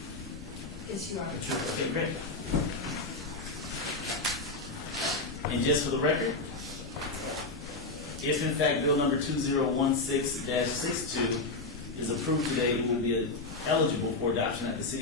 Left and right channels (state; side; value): quieter; right; 3.2 dB